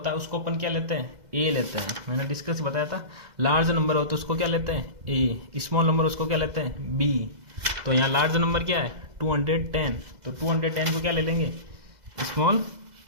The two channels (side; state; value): left; late; 2.0 ms